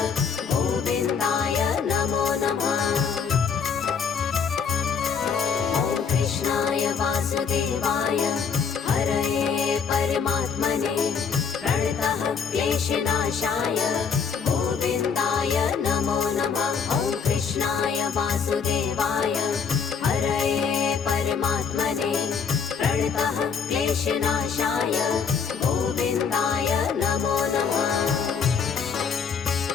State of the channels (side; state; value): right; quieter; 6.3 dB